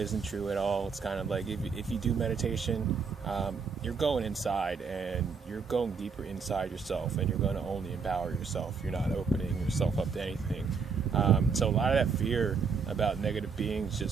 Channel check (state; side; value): quieter; left; 5.5 dB